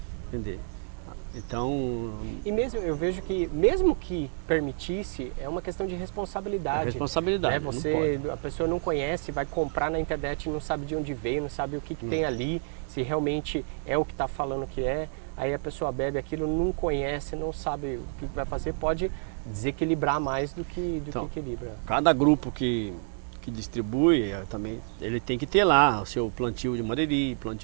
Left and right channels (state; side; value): silent; left; digital silence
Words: Então, e mesmo eu vejo que mesmo que permitisse, é uma questão de responsabilidade. Responsabilidade. A pessoa não conhece, vai comprar na internet, não sabe de onde veio, não sabe o que tem ali, se realmente é o que está falando que é. Aí a pessoa bebe aquilo, não conhece, não sabe o que vai fazer, pode desequilibrar mais do que equilibra. Cada grupo que distribui também, ele tem que ter lá o seu plantio de mariri,